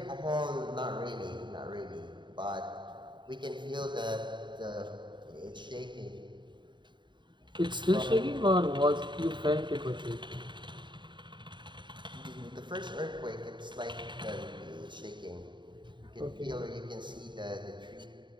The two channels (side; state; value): left; late; 0.23 ms